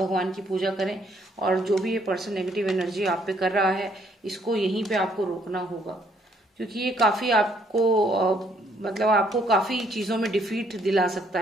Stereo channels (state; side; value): normal; both; correlation 0.68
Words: की पूजा करें और जो भी ये पर्सन नेगेटिव एनर्जी आप पे कर रहा है, इसको यहीं पे आपको रोकना होगा, क्योंकि ये काफी आपको मतलब आपको काफी चीजों में डिफीट दिला सकता